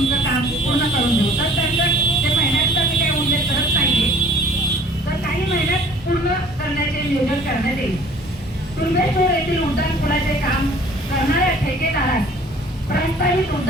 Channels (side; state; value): both; normal; correlation 0.51